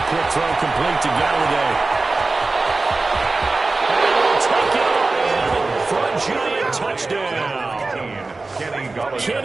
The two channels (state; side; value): quieter; left; 3.5 dB